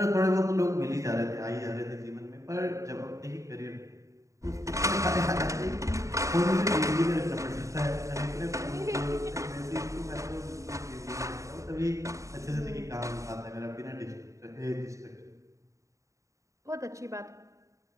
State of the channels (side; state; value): left; late; 0.15 ms